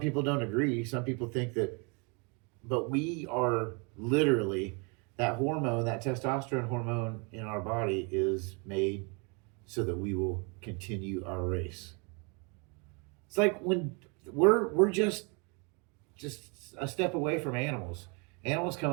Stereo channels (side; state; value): left; quieter; 33.0 dB